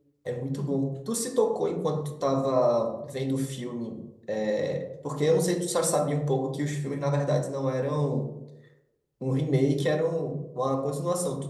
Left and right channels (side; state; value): both; identical; correlation 1.00